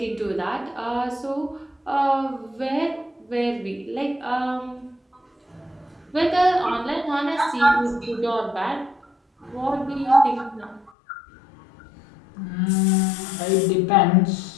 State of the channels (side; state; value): right; drops out; at 10.9 s